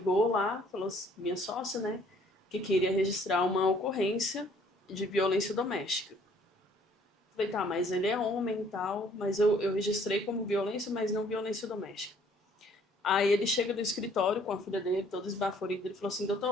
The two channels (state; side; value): normal; both; correlation 0.60